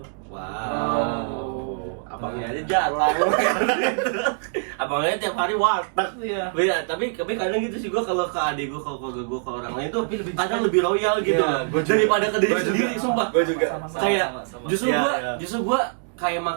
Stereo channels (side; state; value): left; silent; digital silence